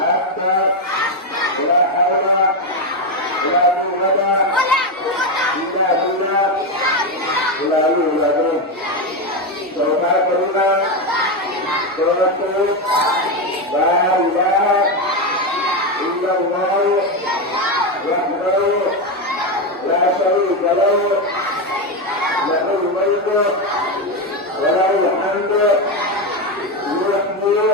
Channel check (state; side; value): normal; both; correlation 0.10